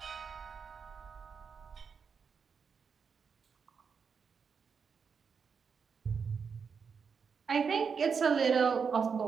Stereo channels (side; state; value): left; quieter; 6.0 dB